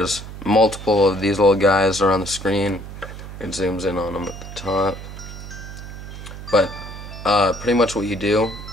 multiple of these little guys are on the screen. It zooms in on them at the top. But pretty much what you do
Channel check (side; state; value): right; noise; hum, 11 dB below the sound